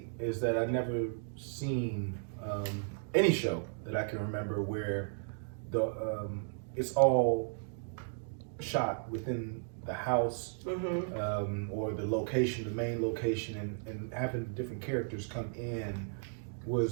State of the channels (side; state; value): left; silent; digital silence